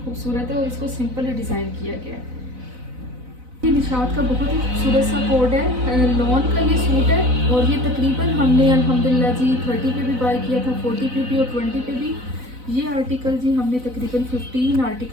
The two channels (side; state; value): left; late; 4.0 ms